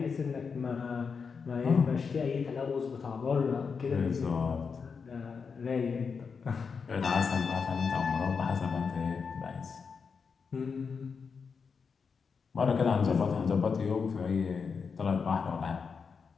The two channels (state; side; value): quieter; right; 5.6 dB